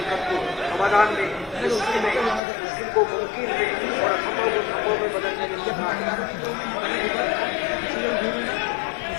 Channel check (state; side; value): drops out; right; at 2.4 s